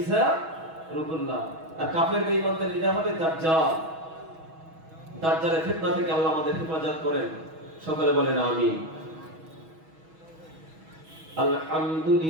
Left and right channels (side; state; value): left; late; 6.2 ms